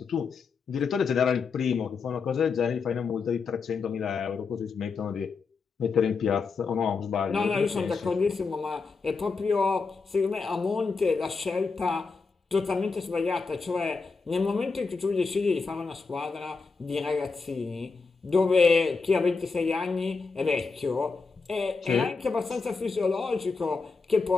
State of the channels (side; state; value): right; quieter; 4.6 dB